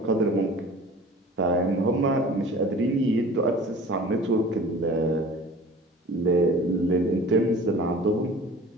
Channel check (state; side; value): normal; both; correlation 0.43